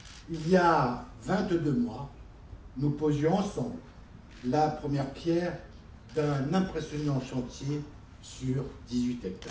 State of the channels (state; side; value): identical; both; correlation 1.00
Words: Il y a 22 mois, nous posions ensemble la première pierre d'un impressionnant chantier sur 18